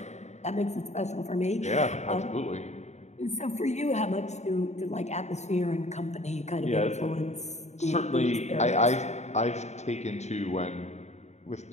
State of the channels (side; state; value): right; late; 0.33 ms